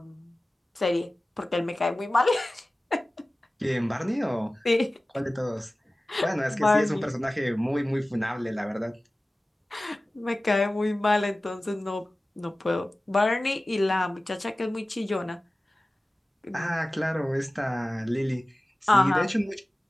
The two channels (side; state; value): both; normal; correlation 0.97